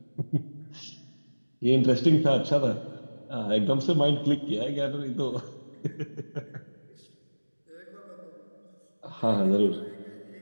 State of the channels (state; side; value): inverted; both; correlation -1.00